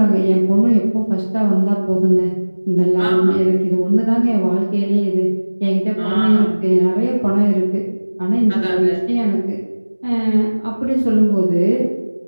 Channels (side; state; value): both; inverted; correlation -1.00